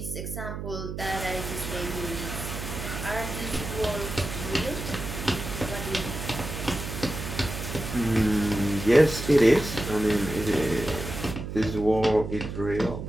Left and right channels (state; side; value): noise; right; hum, 7 dB below the sound